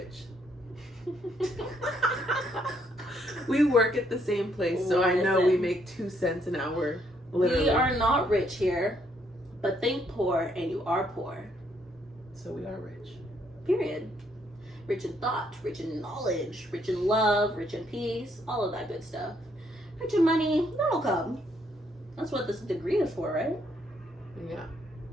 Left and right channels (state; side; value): normal; both; correlation 0.71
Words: We work at the same place, so I know we Listen. make 2 cents an hour. Literally. We are not rich here, but think poor and you are poor. So we are rich. Period. Rich in thought, rich in knowledge, rich in love, rich in peace, all of that good stuff. Rich in money, that'll come. That's what this degree is for, right? Yeah.